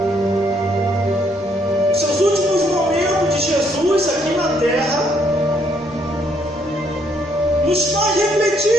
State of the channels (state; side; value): normal; both; correlation 0.70